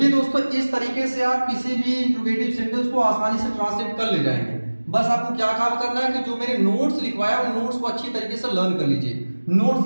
दोस्तों इस तरीके से आप किसी भी इंट्रोगेटिव सेंटेंस को आसानी से ट्रांसलेट कर ले जाएंगे। बस आपको क्या काम करना है कि जो मेरे नोट्स लिखवाया उन नोट्स को अच्छी तरीके से लर्न कर लीजिए।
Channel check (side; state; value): both; inverted; correlation -1.00